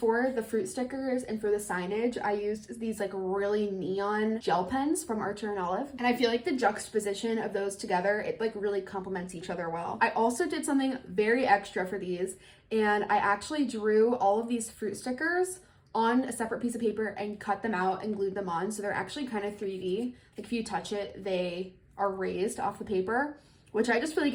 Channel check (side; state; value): both; identical; correlation 1.00